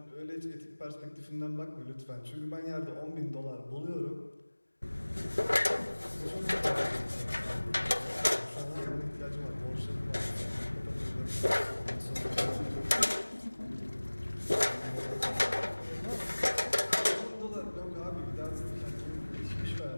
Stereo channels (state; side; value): inverted; both; correlation -1.00